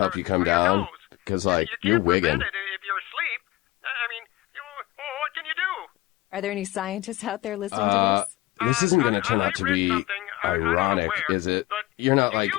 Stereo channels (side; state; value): right; quieter; 17.1 dB